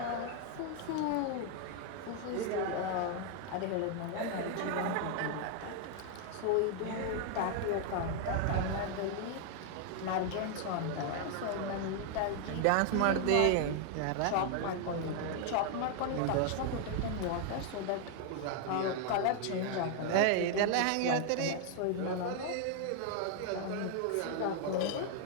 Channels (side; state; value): both; different; correlation 0.00